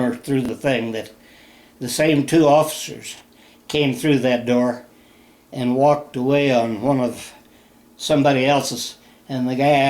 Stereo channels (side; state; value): both; identical; correlation 1.00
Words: through the thing that the same 2 officers came through that door and walked away on one of somebody else's, and the guy